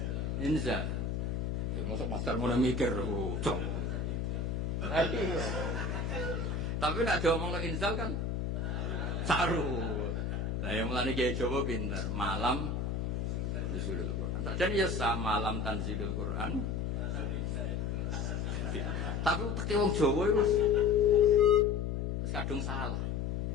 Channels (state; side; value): noise; left; hum, 1 dB below the sound